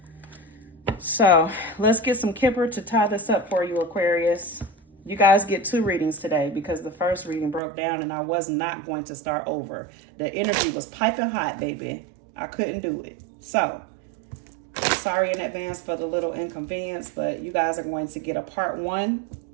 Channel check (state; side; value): drops out; left; at 7.6 s